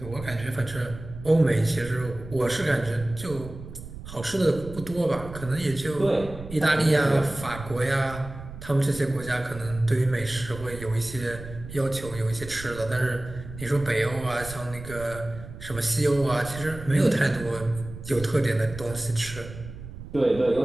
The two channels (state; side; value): noise; right; rumble, 13 dB below the sound